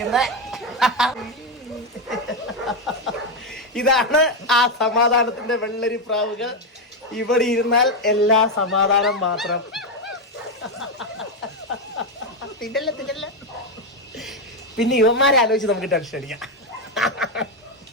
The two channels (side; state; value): both; normal; correlation 0.07